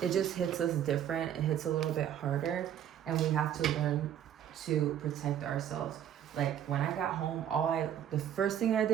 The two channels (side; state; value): left; quieter; 10.1 dB